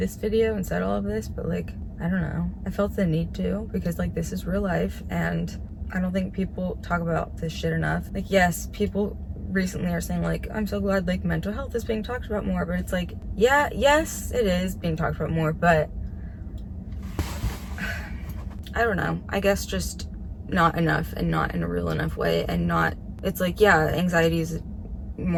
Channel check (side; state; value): both; identical; correlation 1.00